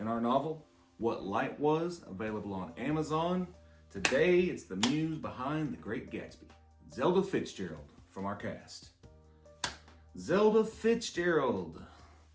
our novel, What Light Was, available on Amazon. Today it's the muse behind The Great Gatsby, Zelda Fitzgerald from our cast. Zelda Fitzgerald.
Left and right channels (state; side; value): identical; both; correlation 1.00